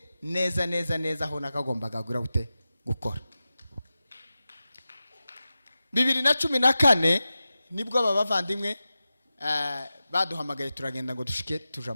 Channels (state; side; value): inverted; both; correlation -0.94